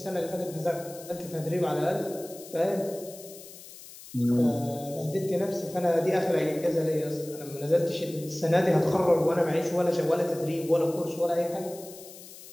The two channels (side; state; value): left; noise; hiss, 17 dB below the sound